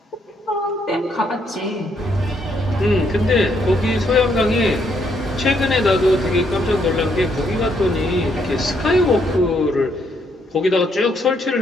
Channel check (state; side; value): normal; both; correlation 0.73